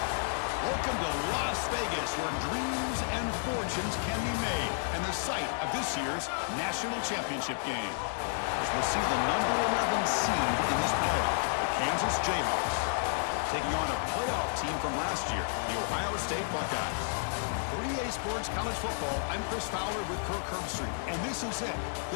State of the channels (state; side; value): silent; right; 57 dB below the other